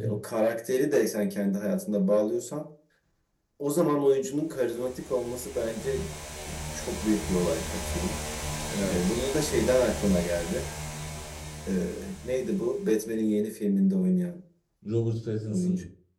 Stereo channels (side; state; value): both; identical; correlation 1.00